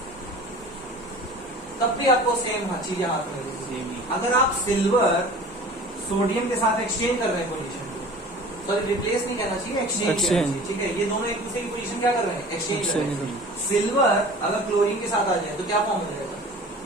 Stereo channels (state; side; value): normal; both; correlation 0.42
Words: तब भी आपको सेम चीजें हाथ में रहेगी। अगर आप सिल्वर सोडियम के साथ एक्सचेंज कर रहे हैं पोजीशन, सॉरी रिप्लेस नहीं करना चाहिए, एक्सचेंज। ठीक है, ये दोनों एक दूसरे की पोजीशन क्या कर रहे हैं? एक्सचेंज कर रहे हैं। सिल्वर अगर क्लोरीन के साथ आ जाए तो क्या फॉर्म हो जाएगा?